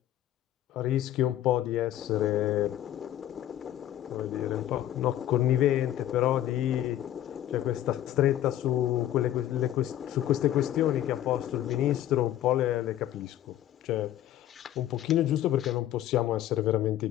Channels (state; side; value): quieter; right; 12.5 dB